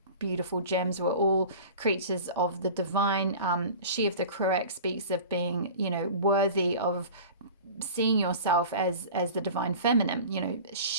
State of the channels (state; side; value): inverted; both; correlation -0.38